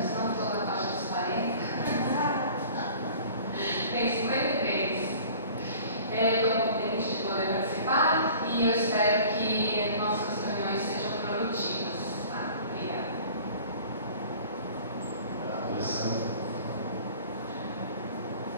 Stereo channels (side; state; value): both; inverted; correlation -0.46